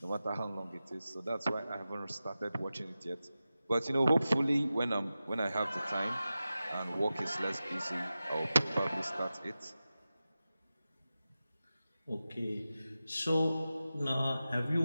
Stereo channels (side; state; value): both; inverted; correlation -0.94